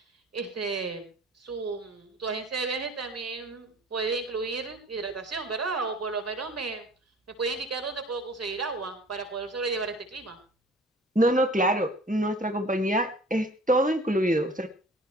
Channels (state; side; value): normal; both; correlation 0.47